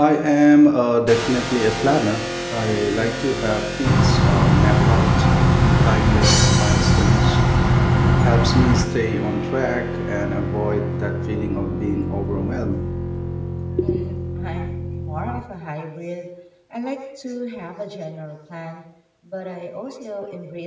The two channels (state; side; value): identical; both; correlation 1.00